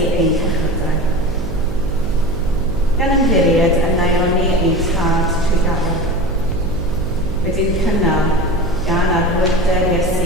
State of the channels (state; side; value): noise; right; hum, 8 dB below the sound